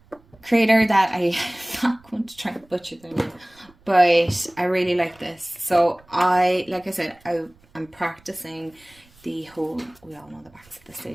creator that I'm not going to try and butcher their name, but I really like this. So like I said, I'm practicing the whole, we all know the backs at this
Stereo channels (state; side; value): noise; right; rumble, 30 dB below the sound